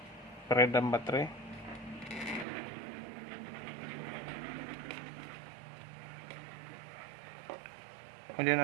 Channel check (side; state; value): left; drops out; at 2.5 s